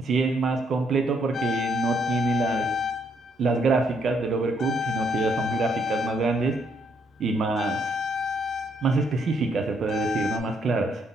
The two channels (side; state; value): both; normal; correlation 0.72